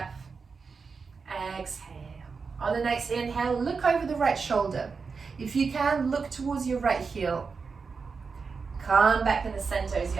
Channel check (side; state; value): left; quieter; 5.0 dB